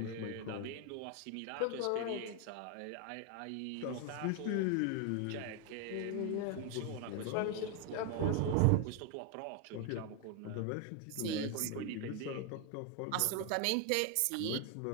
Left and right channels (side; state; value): both; different; correlation 0.01